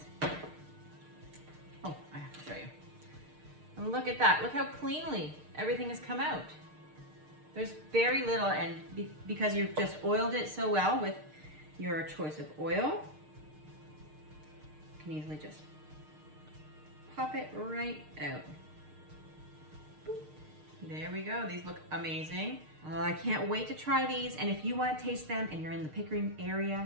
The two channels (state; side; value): late; left; 6.6 ms